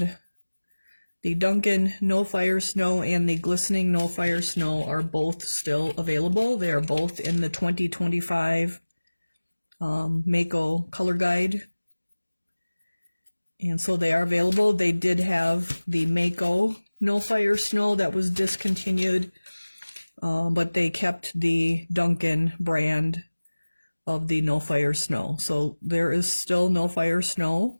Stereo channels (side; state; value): both; inverted; correlation -1.00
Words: the Duncan No Fire Snow and the Glistening No Fire Snow are both still available. They are both in the 2025 Mako color guide. And so they are available. They did have the Mako No Fire Snow that was discontinued, but they kept the Duncan brand of the no fire snow. So there is still no fire